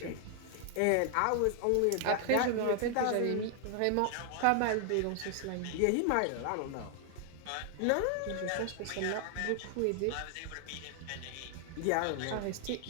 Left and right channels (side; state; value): both; different; correlation 0.00